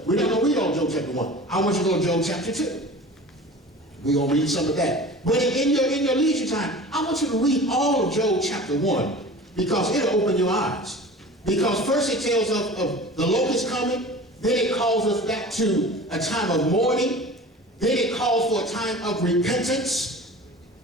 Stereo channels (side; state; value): both; normal; correlation 0.39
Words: We're not going to read all Job chapter 1. I want you to go to Job chapter 2. We're going to read some of that. But in your leisure time, I want you to read all of Job chapter 1, because it'll open your eyes. Because first it tells of the locust coming, then it calls us back to a time of mourning, then it calls for a time of repentance,